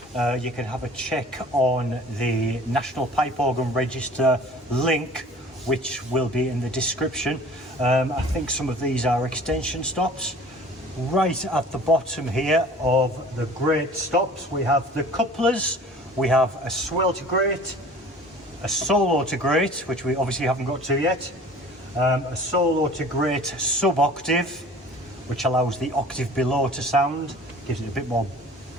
you can have a check on the National Pipe Organ Register link, which will be in the description. I think some of these are extension stops. Right at the bottom here of the grate stops, we have the couplers, we have a swell to grate, a solo to grate, which we obviously haven't got to yet, a solo to grate sub-octave, which allows the octave below to sound, gives it a bit more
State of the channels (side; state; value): both; normal; correlation 0.46